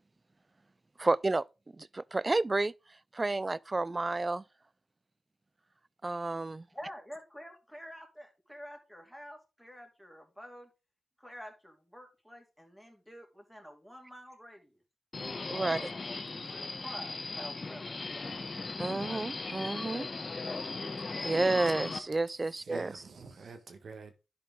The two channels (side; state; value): both; normal; correlation 0.97